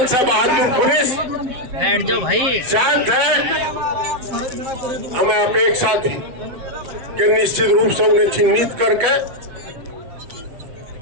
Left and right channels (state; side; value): late; left; 8.1 ms